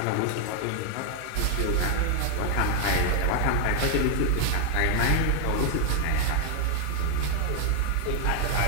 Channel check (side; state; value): both; different; correlation 0.00